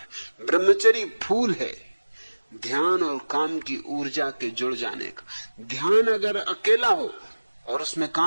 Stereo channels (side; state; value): both; inverted; correlation -1.00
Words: है। ब्रह्मचर्य फूल है ध्यान और काम की ऊर्जा के जुड़ जाने का। ध्यान अगर अकेला हो और उसमें